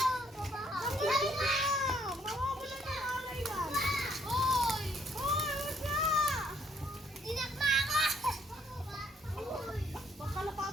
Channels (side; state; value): both; normal; correlation 0.67